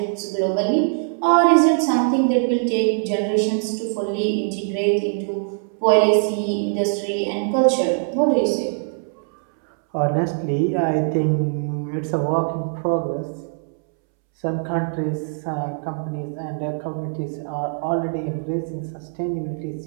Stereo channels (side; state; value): left; silent; 64 dB below the other